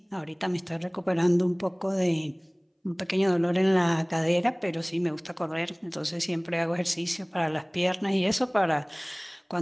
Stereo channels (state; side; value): identical; both; correlation 1.00